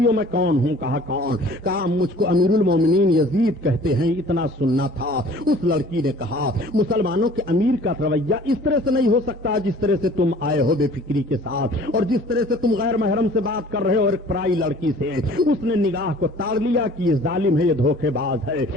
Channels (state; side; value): normal; both; correlation 0.50